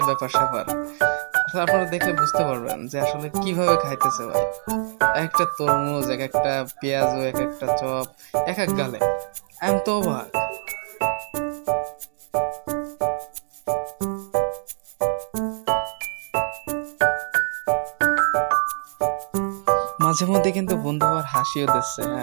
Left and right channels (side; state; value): left; silent; digital silence